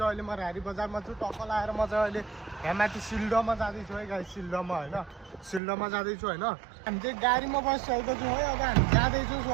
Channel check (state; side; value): drops out; left; at 5.6 s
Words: अहिले म रारी बजारमा छु। टक्क लाएर म चाहिँ अहिले यहाँ माथि सिल्डोमा जाँदैछु है गाइज। सिल्डोमा होइन, सिल्डोमा जाँदैछु होइन। हामी चाहिँ गाडीमा बसिसकेको छु है। अब हामी जाँदैछु